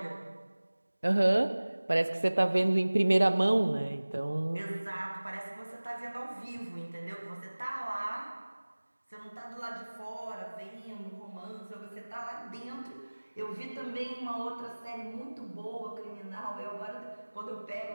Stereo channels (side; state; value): both; inverted; correlation -1.00